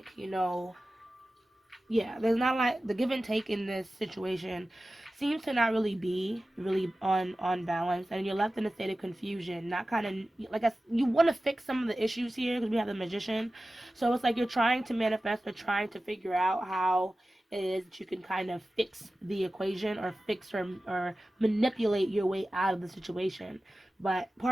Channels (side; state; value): both; normal; correlation 0.95